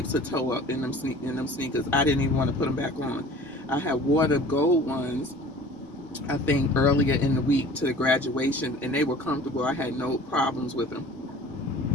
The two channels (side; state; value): both; normal; correlation 0.45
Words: of toe up in them sneakers. I didn't even want to put them back on. I had wore the gold ones, I think, earlier in the week to the graduation, and they were comfortable. I had no problems with them.